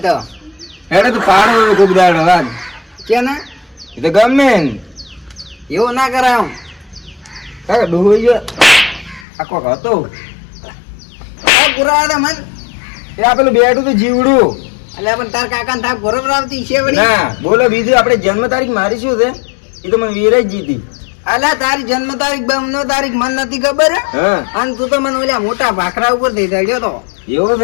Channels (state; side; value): drops out; right; at 9.2 s